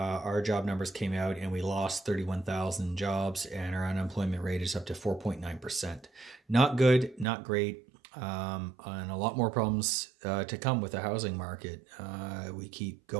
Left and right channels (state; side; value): drops out; left; at 7.2 s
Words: our job numbers came out and we lost 31,000 jobs, and our unemployment rate is up to 4.9%. Not good, not great, and a lot more problems to come with the housing market. We keep